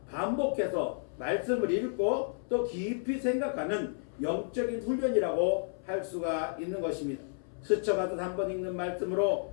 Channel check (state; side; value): silent; right; 57 dB below the other